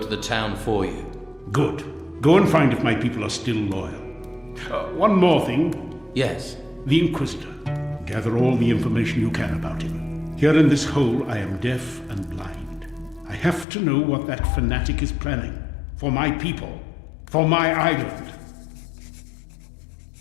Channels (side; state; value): right; drops out; at 13.7 s